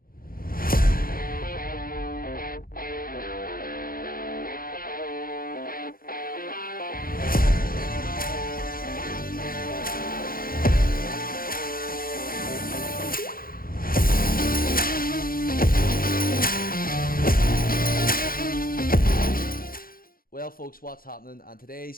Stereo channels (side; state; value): right; late; 0.42 ms